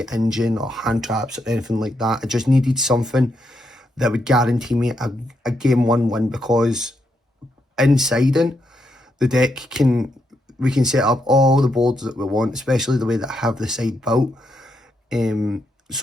an engine or hand traps or anything like that. I just needed something that would guarantee me a game 1 win, because in siding the deck we can set up all the boards that we want, especially the way that I have the side built.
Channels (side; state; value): both; normal; correlation 0.80